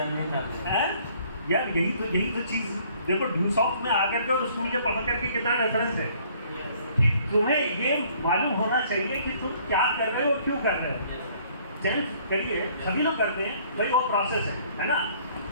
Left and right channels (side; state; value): both; inverted; correlation -0.59